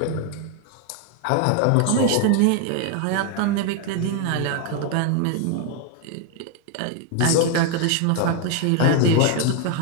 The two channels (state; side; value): different; both; correlation 0.01